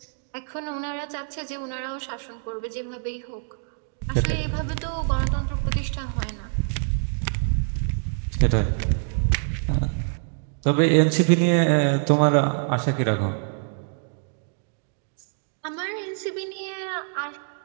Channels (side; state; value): left; silent; digital silence